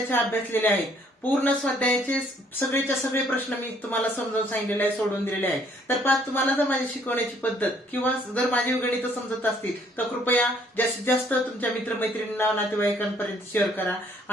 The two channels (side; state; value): both; normal; correlation 0.63